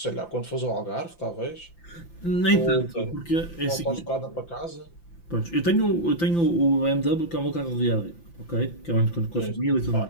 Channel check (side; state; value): right; late; 5.9 ms